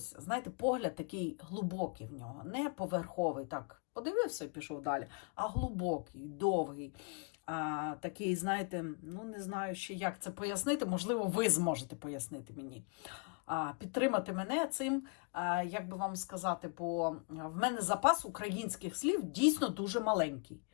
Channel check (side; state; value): right; quieter; 37.3 dB